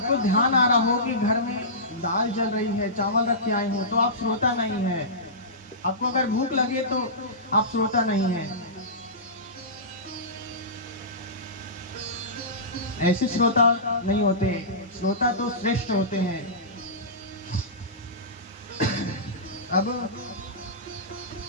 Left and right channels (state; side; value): normal; both; correlation -0.20